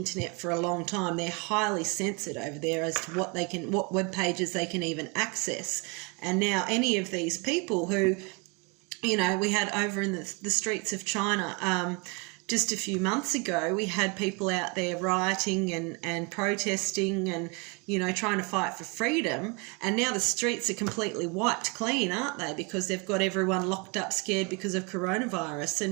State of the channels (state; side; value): quieter; left; 31.3 dB